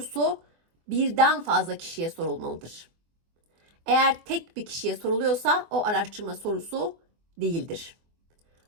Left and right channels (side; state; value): left; late; 24 ms